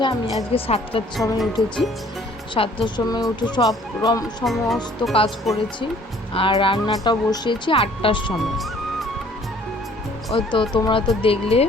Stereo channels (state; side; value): normal; both; correlation 0.56